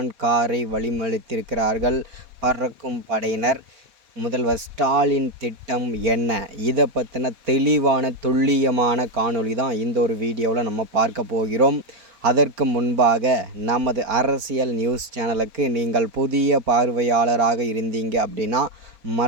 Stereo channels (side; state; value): left; late; 4.1 ms